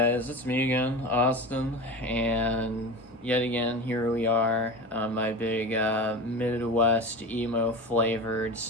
it's me again, Austin, and yet again, here we are on my big Midwest emo flavored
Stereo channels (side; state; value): both; normal; correlation 0.29